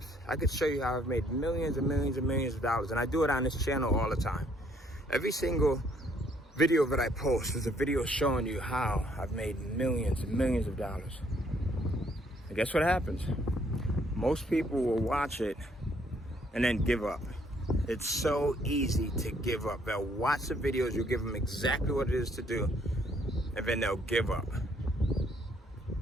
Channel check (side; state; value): both; normal; correlation 0.66